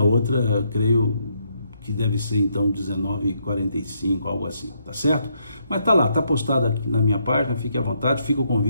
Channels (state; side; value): inverted; both; correlation -0.75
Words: outra, creio que deve ser então 19h45, algo assim, tá certo? Mas tá lá, tá postado aqui na minha página, fique à vontade, fica o